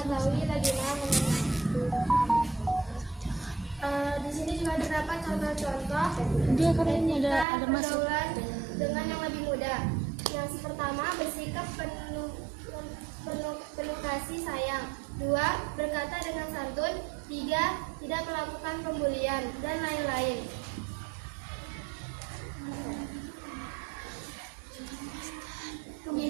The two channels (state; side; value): drops out; left; at 7.5 s